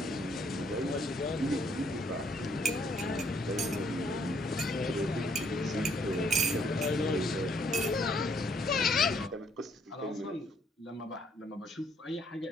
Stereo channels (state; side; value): normal; both; correlation 0.67